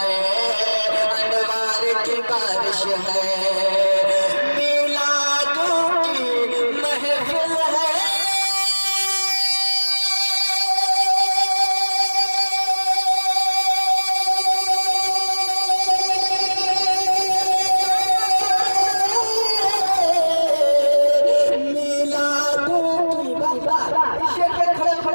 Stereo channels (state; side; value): inverted; both; correlation -1.00